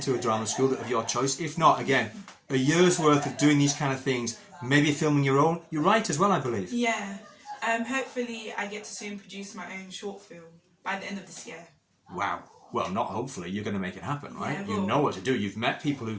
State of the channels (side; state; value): both; identical; correlation 1.00